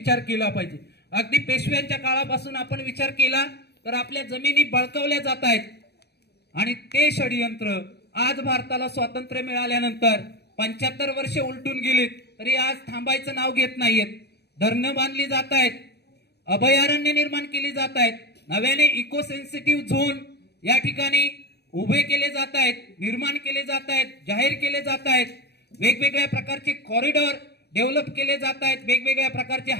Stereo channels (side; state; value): right; late; 0.48 ms